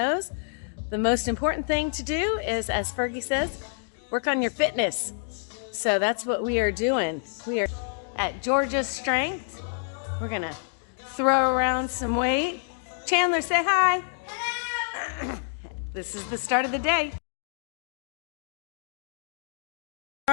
the most important thing to do is, as Fergie says, work on your fitness. So that's what we are doing. We are at Georgia's Strength. We're gonna throw around some weight. Chandler, say hi. This is the start of the day.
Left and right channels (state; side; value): silent; right; digital silence